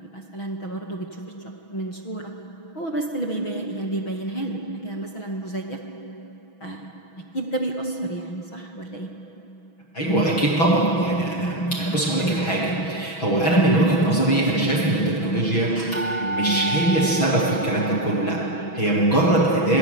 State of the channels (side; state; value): right; late; 6.2 ms